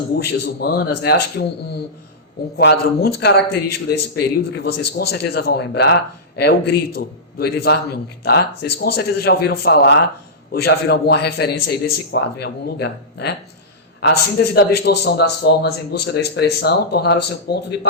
humanas, né? Acho que um quadro muito característico desse período, que vocês com certeza vão lembrar, é o Grito, do Edvard Munch, tá? Vocês com certeza já ouviram falar ou já viram alguma referência aí desse quadro em algum lugar, né? A síntese da distorção das formas em busca da expressão tornaram-se um ponto de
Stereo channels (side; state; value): both; normal; correlation -0.15